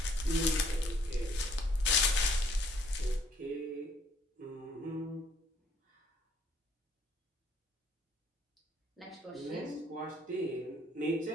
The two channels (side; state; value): both; normal; correlation 0.63